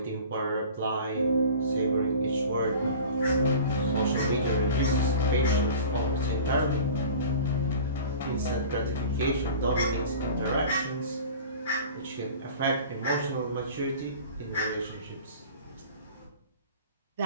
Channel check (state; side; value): inverted; both; correlation -0.41